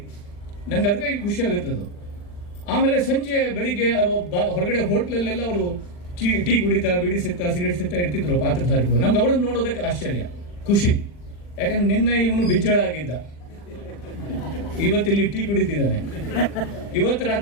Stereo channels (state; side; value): late; right; 40 ms